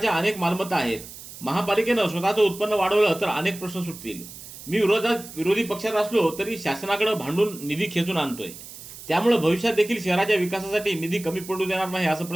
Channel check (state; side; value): noise; right; hiss, 15 dB below the sound